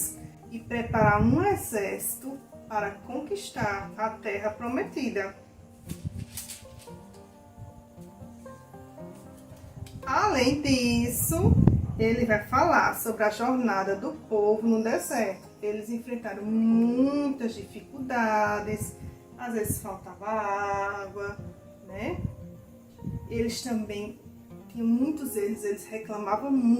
e preparar um exército para conquistar a terra prometida. Além disso, ele vai falar sobre a jornada do povo no deserto. Eles enfrentaram muitas dificuldades, às vezes faltava água, né? Eles também tinham muitos erros, eles reclamavam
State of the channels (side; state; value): both; identical; correlation 1.00